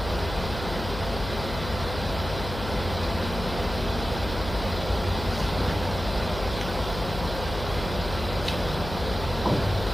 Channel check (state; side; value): noise; left; hum, 8 dB below the sound